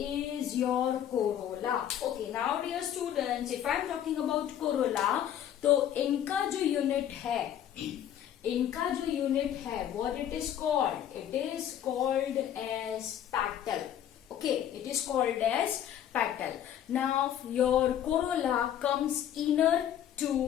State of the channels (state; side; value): quieter; right; 10.4 dB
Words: your corolla. Okay, now dear students, if I am talking about corolla, तो इनका जो unit है, what it is called? It is called as petal. Okay, it is called as petal. Now your corolla comes inner